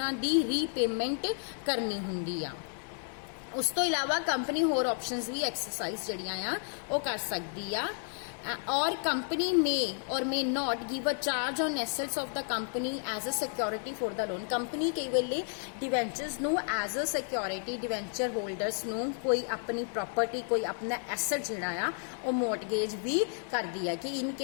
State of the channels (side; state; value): right; silent; 55 dB below the other